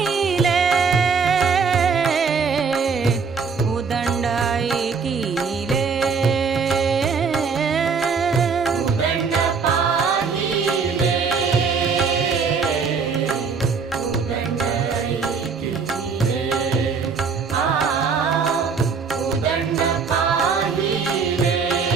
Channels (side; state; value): left; quieter; 5.5 dB